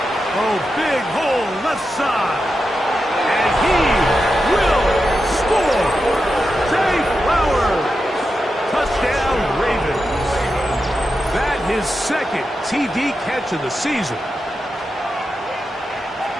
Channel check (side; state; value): both; normal; correlation 0.89